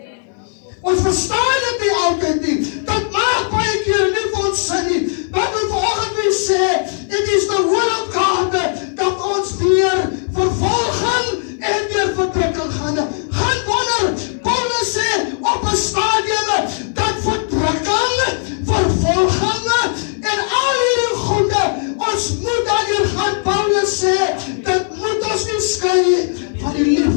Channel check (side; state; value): right; silent; 57 dB below the other